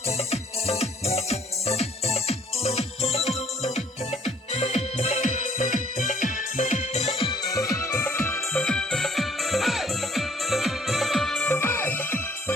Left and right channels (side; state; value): both; normal; correlation 0.60